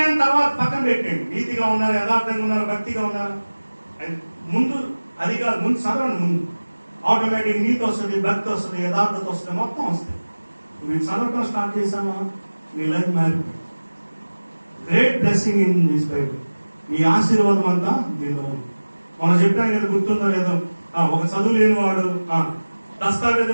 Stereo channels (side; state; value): both; inverted; correlation -1.00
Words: తర్వాత పక్కన పెట్టండి. నీతిగా ఉన్నారు, యథార్థంగా ఉన్నారు, భక్తిగా ఉన్నారు, ముందు అది కాదు. ముందు చదవండి. ముందు ఆటోమేటిక్ నీతి వస్తుంది, భక్తి వస్తుంది, యథార్థత వస్తుంది, మొత్తం వస్తుంది. మీరు చదవటం స్టార్ట్ చేసామా మీ లైఫ్ మారిపోయింది. Great blessing in this Bible. మీ ఆశీర్వాదం అంతా దీనిలో ఉంది. మనం చెప్పాం కదా, గుర్తుందో లేదో, ఒక చదువు లేని వాడు